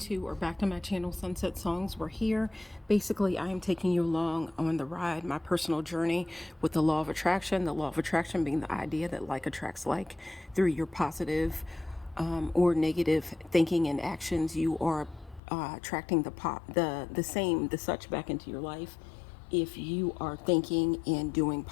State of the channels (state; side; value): drops out; right; at 15.4 s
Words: or back to my channel, Sunset Songs. We're here. Basically, I am taking you along on the ride, my personal journey with the law of attraction. The law of attraction being the idea that like attracts like through your positive or negative thinking and actions. You are attracting the such back into your life. If you are thinking and doing